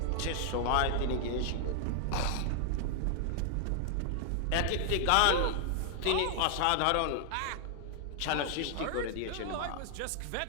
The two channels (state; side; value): different; both; correlation 0.00